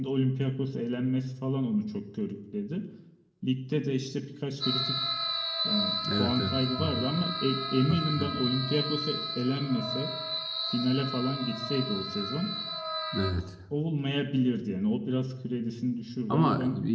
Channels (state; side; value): identical; both; correlation 1.00